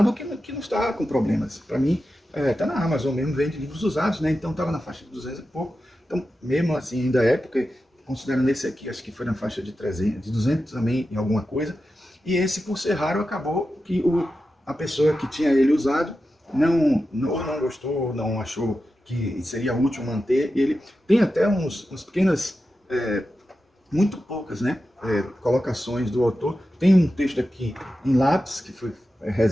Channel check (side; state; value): both; normal; correlation 0.91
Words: que não está com problemas. Para mim, está na Amazon mesmo, vende livros usados, né? Então estava na faixa de 200 e pouco. Então, mesmo assim, ainda é, porque considerando esse aqui, acho que foi na faixa de 300, de 200 também em alguma coisa. E esse, por ser raro, acabou que a pessoa que tinha ele usado não gostou, não achou que seria útil manter, e ele tem até uns pequenas, muito poucas, né, colocações do autor. Tem um texto aqui em lápis, que foi